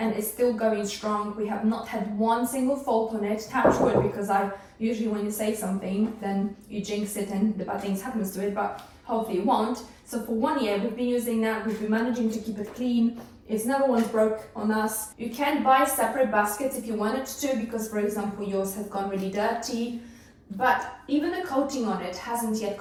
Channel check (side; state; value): both; identical; correlation 1.00